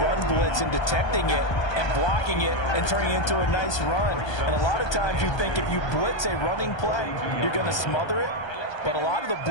blitz and detecting it and blocking it and turning it into a nice run. And a lot of times you think if you blitz a running play, you're going to smother it. But a lot of the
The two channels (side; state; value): right; late; 1.2 ms